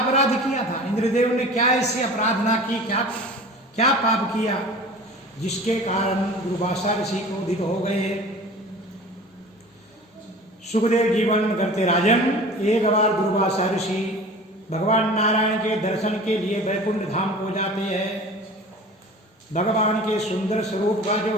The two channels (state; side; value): normal; both; correlation 0.40